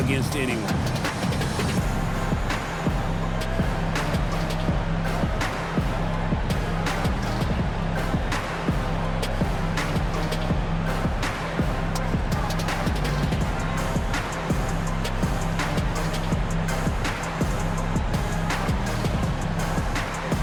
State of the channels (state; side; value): identical; both; correlation 1.00